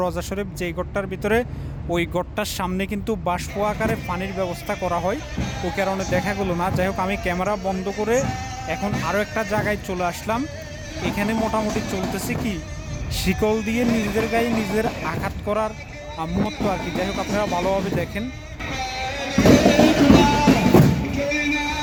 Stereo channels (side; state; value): both; identical; correlation 1.00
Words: রোজা শরীফ যেই গড়টার ভিতরে, ওই গড়টার সামনে কিন্তু বাষ্প আকারে পানির ব্যবস্থা করা হয়, ওই কারণে দেখা গেল না। যাই হোক, আমি ক্যামেরা বন্ধ করে এখন আরও একটা জায়গায় চলে আসলাম। এখানে মোটামুটি চলতেছে কি, শিকল দিয়ে নিজেদের গায়ে নিজেদের আঘাত করার মুহূর্ত আর কি। যাই হোক, আপনারা ভালোভাবে দেখেন।